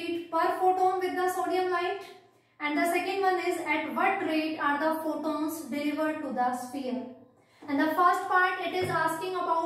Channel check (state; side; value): identical; both; correlation 1.00